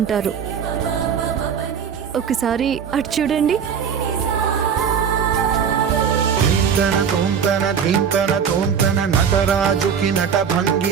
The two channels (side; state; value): left; quieter; 7.3 dB